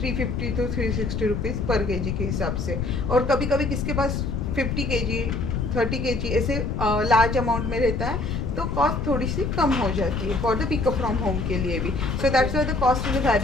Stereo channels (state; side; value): noise; left; rumble, 1 dB below the sound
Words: to 360 rupees पर kg के हिसाब से। और कभी कभी किसके पास 50 kg 30 kg ऐसे लार्ज अमाउंट में रहता है तो कॉस्ट थोड़ी सी कम हो जाती है for the pickup from home के लिए भी। So that's why the cost is